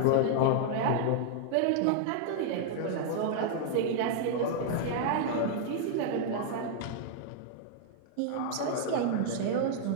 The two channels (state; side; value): different; both; correlation -0.01